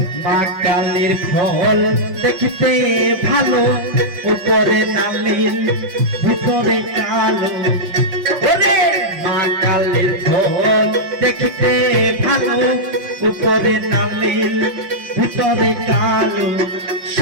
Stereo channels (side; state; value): left; late; 5.7 ms